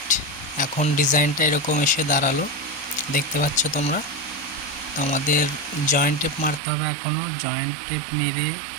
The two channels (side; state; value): left; drops out; at 6.6 s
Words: এখন ডিজাইনটা এরকম এসে দাঁড়ালো, দেখতে পাচ্ছ তোমরা। তো আমাদের জয়েন্ট টেপ মারতে হবে, এখনও জয়েন্ট টেপ মেরে